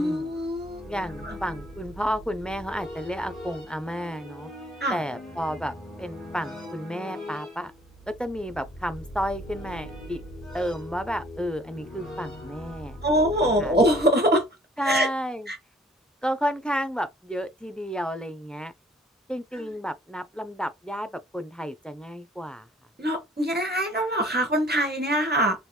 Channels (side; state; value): both; normal; correlation 0.58